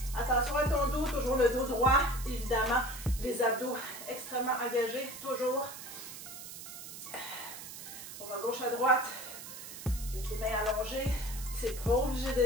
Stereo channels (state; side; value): noise; right; hiss, 11 dB below the sound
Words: Attention à ton dos, toujours le dos droit, évidemment. Les abdos extrêmement engagés, toujours. On va gauche à droite, avec les mains allongées. C'est pas obligé